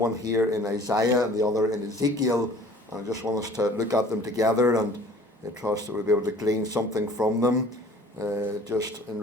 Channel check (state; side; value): normal; both; correlation 0.50